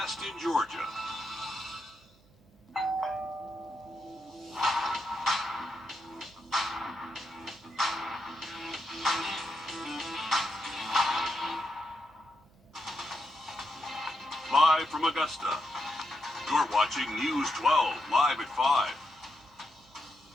in Georgia. Live from Augusta, you're watching News 12, live at 5.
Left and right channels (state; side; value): noise; right; hum, 30 dB below the sound